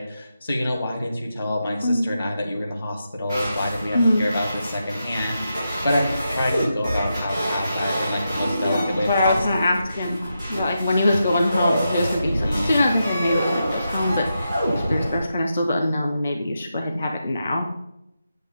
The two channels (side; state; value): both; inverted; correlation -0.86